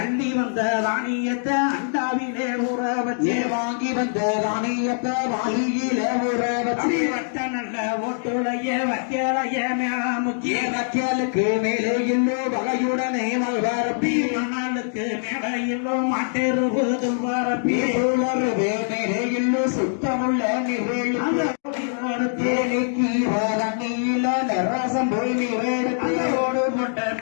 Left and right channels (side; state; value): right; silent; digital silence